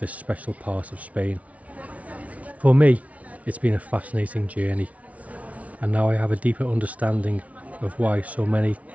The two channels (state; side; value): late; left; 0.067 ms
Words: special part of Spain. For me, it's been a fascinating journey, and now I have a deeper understanding of why so many